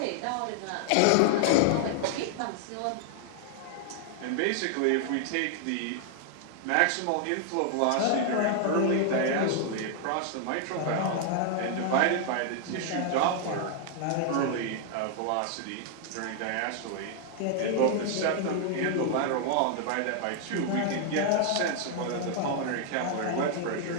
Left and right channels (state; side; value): different; both; correlation 0.00